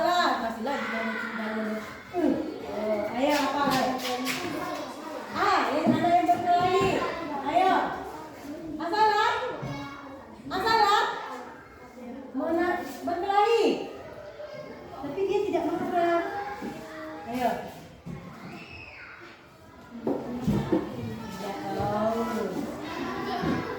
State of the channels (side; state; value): both; identical; correlation 1.00